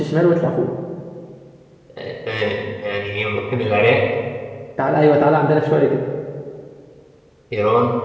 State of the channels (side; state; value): both; identical; correlation 1.00